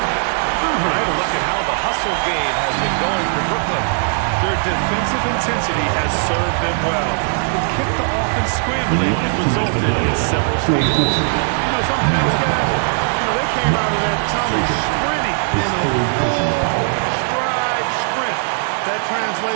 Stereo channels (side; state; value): left; silent; 58 dB below the other